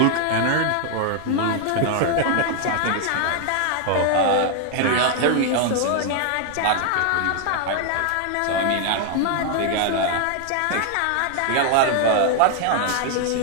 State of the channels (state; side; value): different; both; correlation 0.00